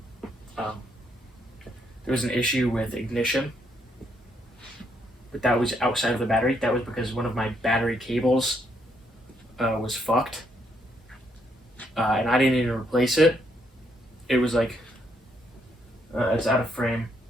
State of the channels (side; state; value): both; normal; correlation 0.74